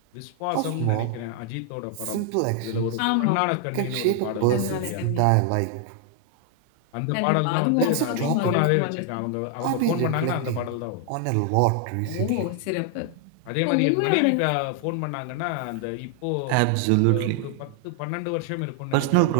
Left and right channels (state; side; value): different; both; correlation 0.00